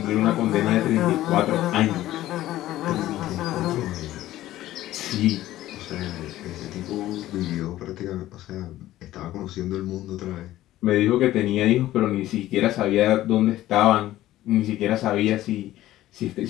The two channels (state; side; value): quieter; right; 14.8 dB